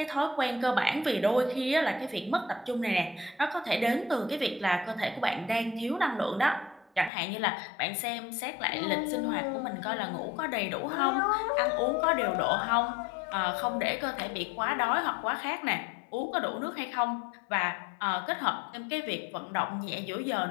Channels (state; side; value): drops out; right; at 7.1 s